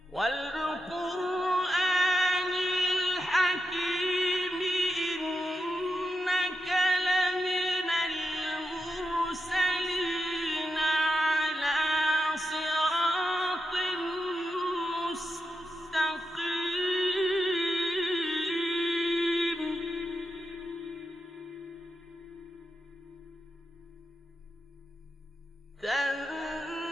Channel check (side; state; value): both; normal; correlation 0.87